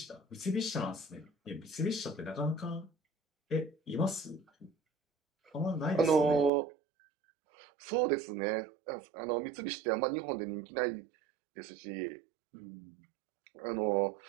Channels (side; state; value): left; drops out; at 6.5 s